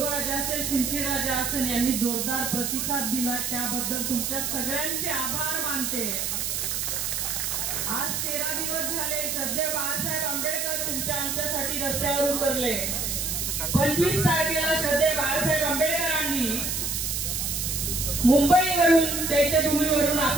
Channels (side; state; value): right; noise; hiss, 1 dB below the sound